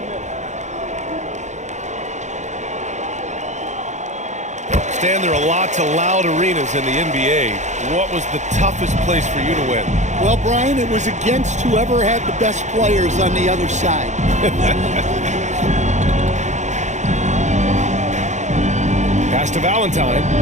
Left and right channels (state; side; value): late; left; 0.34 ms